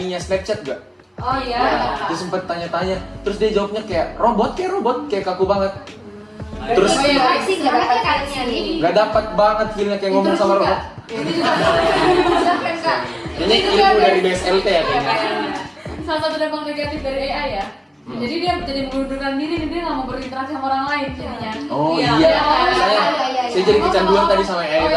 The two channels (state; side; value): identical; both; correlation 1.00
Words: Snapchat gak? Oh iya. Dia sempet tanya-tanya, terus dia jawabnya kayak robot, kayak kaku banget. Terus Oh iya, sih nggak dapat kayaknya nih. nggak dapat banget feelnya kayak ngomong sama robot. Itu juga. Kak. Ini ilmu dari BSLT ya kayaknya. Salah satu dampak negatif dari AI ya. Jadi dia jadi mengundurkan diri dan dia nggak mau berinteraksi sama orang lain jadinya. Oh Iya. iya, Iya. saya jadi kecanduan tadi sama AI Oh, iya,